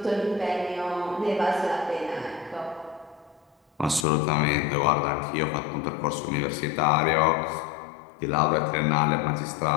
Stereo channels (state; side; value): drops out; right; at 4.0 s